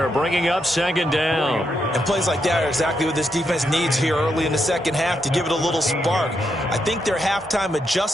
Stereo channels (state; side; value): normal; both; correlation 0.81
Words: bringing up second down. And plays like that are exactly what this defense needs here early in the second half to give it a little spark. I think their halftime